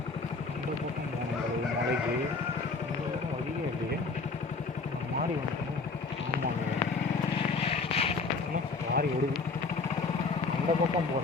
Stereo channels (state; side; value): quieter; right; 4.2 dB